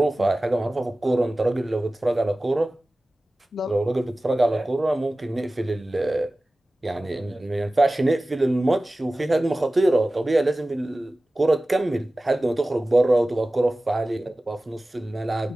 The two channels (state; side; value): normal; both; correlation 0.97